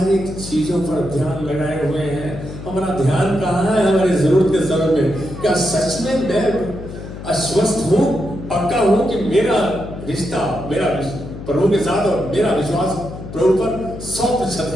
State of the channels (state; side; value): noise; left; hum, 11 dB below the sound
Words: चीजों पर ध्यान लगाए हुए हैं। हमारा ध्यान कहाँ है हमारी जरूरत के समय में? क्या सच में मैं अस्वस्थ हूं? पक्का हूं कि मेरा रिश्ता मेरा प्रभु के साथ और मेरा विश्वास प्रभु पर 100%